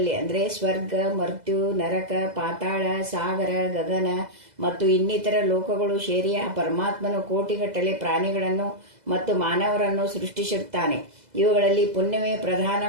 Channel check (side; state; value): left; late; 2.0 ms